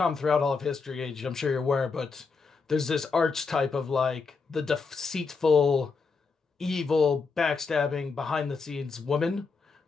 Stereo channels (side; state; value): right; quieter; 4.7 dB